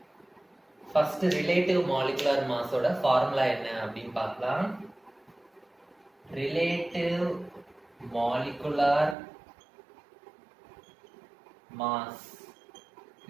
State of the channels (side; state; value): left; drops out; at 9.2 s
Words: First relative molecular mass ஓட ஃபார்முலா என்ன அப்படின்னு பார்க்கலாம். Relative molecular mass